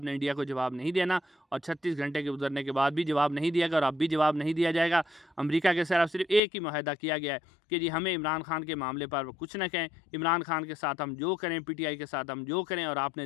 نے انڈیا کو جواب نہیں دینا، اور 36 گھنٹے کے گزرنے کے بعد بھی جواب نہیں دیا گا، اور اب بھی جواب نہیں دیا جائے گا۔ امریکہ کے صرف ایک ہی معاہدہ کیا گیا ہے کہ جی ہمیں عمران خان کے معاملے پر کچھ نہ کہیں، عمران خان کے ساتھ ہم جو کریں، پی ٹی آئی کے ساتھ ہم جو کریں، اور آپ نے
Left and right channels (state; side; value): drops out; right; at 6.4 s